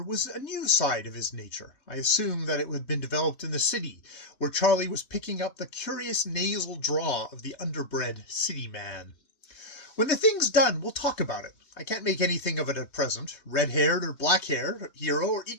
was a new side of his nature. I assumed that it had been developed in the city, where Charlie was picking up the curious nasal drawl of the underbred city man. When the thing's done, we'll talk about it. I can't make anything of it at present. Red-haired or black-haired hero are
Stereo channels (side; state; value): right; late; 3.3 ms